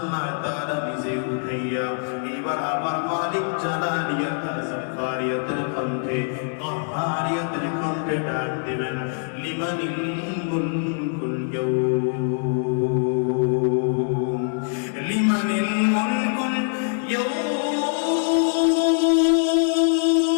তাআলা নিজে উঠাইয়া এবার আমার মালিক জালালিয়াতের জাব্বারিয়াতের কণ্ঠে কাহারিয়াতের কণ্ঠে ডাক দিবেন, লিমানিল মুলকুল ইয়াউম, লিমানিল মুলকুল ইয়াউম,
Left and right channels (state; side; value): silent; right; 63 dB below the other